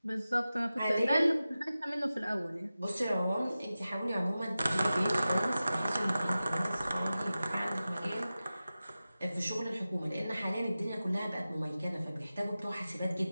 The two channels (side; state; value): both; inverted; correlation -0.95